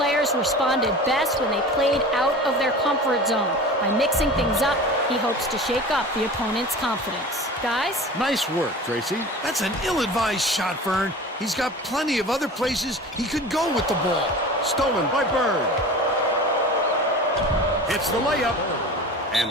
responded best when they played out of their comfort zone. By mixing things up, he hopes to shake up the opponent's confidence. Guys? Nice work, Tracy. That's an ill-advised shot, Vern. He's got plenty of other places he could go with the ball. Stolen by Bird. Hits the layup.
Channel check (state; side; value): normal; both; correlation 0.36